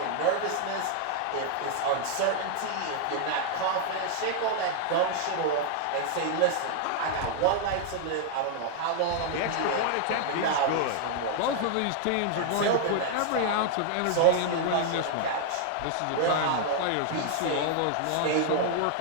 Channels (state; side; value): different; both; correlation 0.00